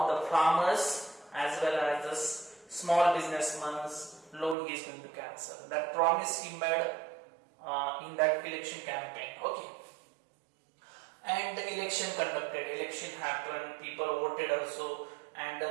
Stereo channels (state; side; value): drops out; left; at 4.5 s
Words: the farmers as well as the small businessmen's loan he is going to cancel. That promise he made in that election campaign. Okay. And the election happened, people voted also, and the